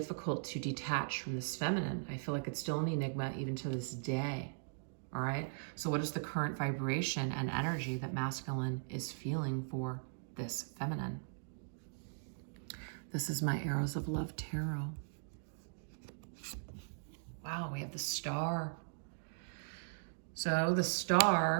to detach from this feminine. I feel like it's still an enigma even to this day, all right? So what is the current vibration and energy that masculine is feeling for this feminine? This is my Arrows of Love Tarot. Wow, we have the Star. So the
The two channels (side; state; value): left; silent; digital silence